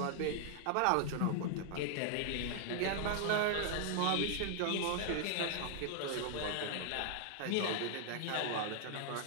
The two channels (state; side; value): different; both; correlation 0.00